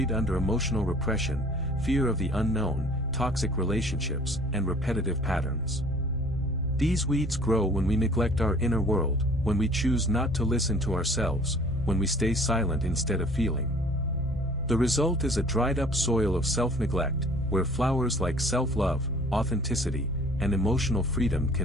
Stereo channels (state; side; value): normal; both; correlation 0.50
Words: under emotional repression, fear of the unknown, toxic relationships, and repetitive patterns. These weeds grow when we neglect our inner world, when we choose not to listen to ourselves, when we stay silent instead of feeling. The result is a dried-up soil of self-neglect, where flowers like self-love, authenticity, and emotional freedom